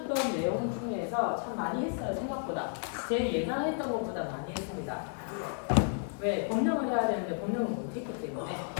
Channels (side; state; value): right; silent; 56 dB below the other